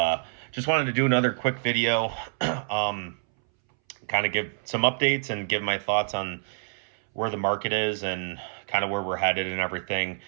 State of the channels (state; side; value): silent; left; 60 dB below the other